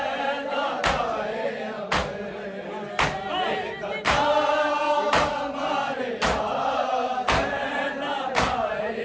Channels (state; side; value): identical; both; correlation 1.00